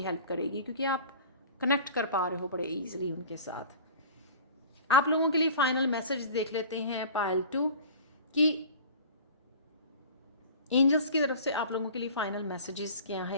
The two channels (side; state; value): both; inverted; correlation -0.41